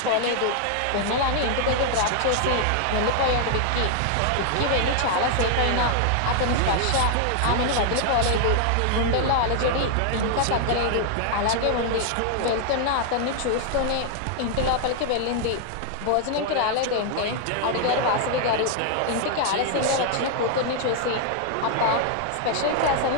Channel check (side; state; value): both; different; correlation 0.00